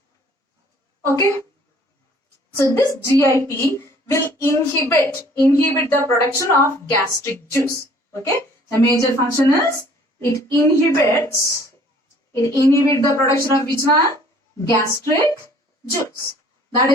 Okay. So this GIP will inhibit the production of gastric juice. Okay. The major function is it inhibits the production of which one? Gastric juice. That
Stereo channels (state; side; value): normal; both; correlation 0.55